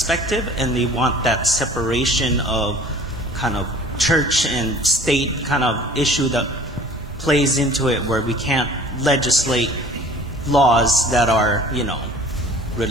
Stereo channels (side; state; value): both; normal; correlation 0.47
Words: and they want that separation of kind of church and state kind of issue that plays into it, where we can't legislate laws that are,